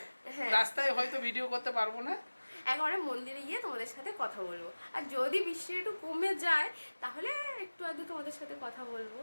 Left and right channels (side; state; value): both; inverted; correlation -1.00